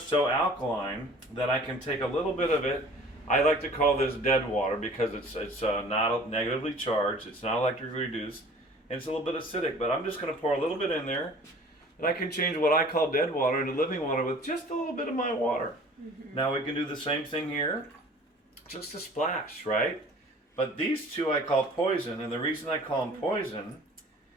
alkaline that I can take a little bit of it. I like to call this dead water because it's not negatively charged, it's not electrically reduced, and it's a little bit acidic. But I'm just going to pour a little bit in there, and I can change what I call dead water into living water with just a little bit of my water. Mm-hmm. Now we can do the same thing here, just a splash, right? But these two I call poison, and the reason I call them poison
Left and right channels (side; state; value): both; normal; correlation 0.47